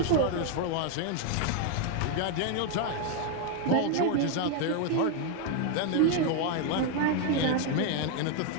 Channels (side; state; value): both; different; correlation 0.01